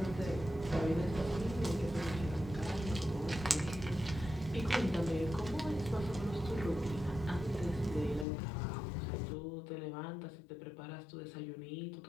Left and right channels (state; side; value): drops out; right; at 8.2 s